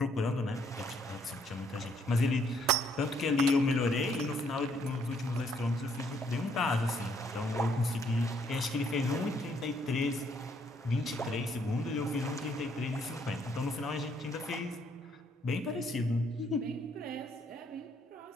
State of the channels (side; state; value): both; normal; correlation 0.68